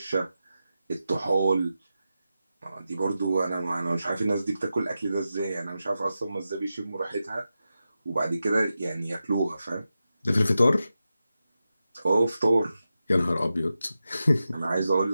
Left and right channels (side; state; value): both; inverted; correlation -0.91